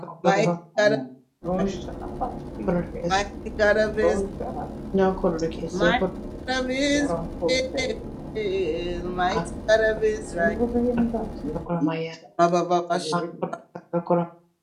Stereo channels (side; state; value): both; identical; correlation 1.00